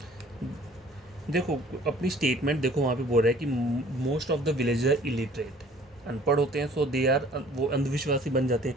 देखो अपनी स्टेटमेंट देखो, वहाँ पे बोल रहा है कि most of the villager are illiterate, अनपढ़ होते हैं, सो दे आर, वो अंधविश्वासी बन जाते हैं।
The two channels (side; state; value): both; normal; correlation 0.53